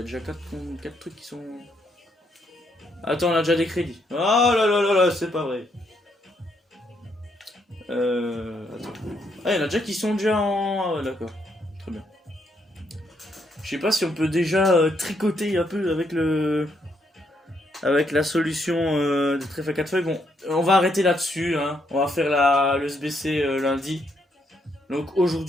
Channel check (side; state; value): both; normal; correlation 0.75